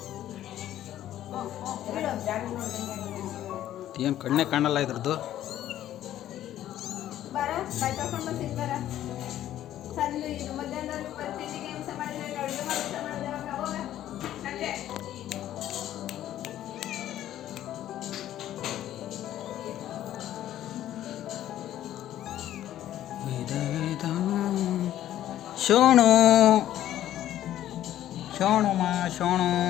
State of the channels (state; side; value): quieter; right; 12.4 dB